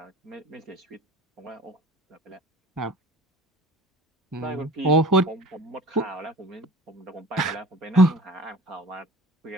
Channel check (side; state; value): both; normal; correlation 0.43